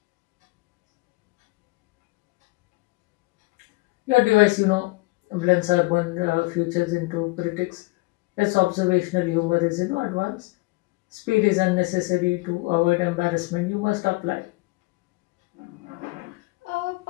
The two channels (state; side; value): quieter; right; 24.2 dB